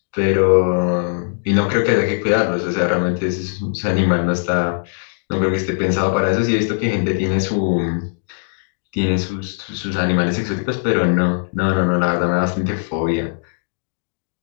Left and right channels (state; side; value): silent; right; digital silence